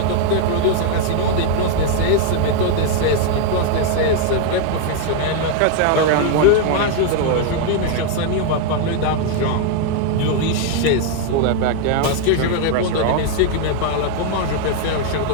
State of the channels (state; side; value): different; both; correlation 0.00